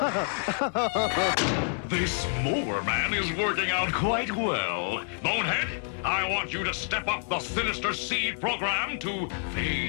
This Mower Man is working out quite well. Bonehead, I want you to step up the Sinister Seed program to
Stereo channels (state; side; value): silent; right; 59 dB below the other